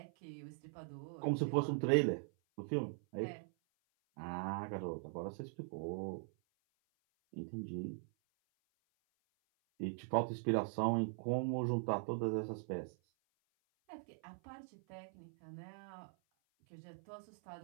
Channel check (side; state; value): left; silent; 50 dB below the other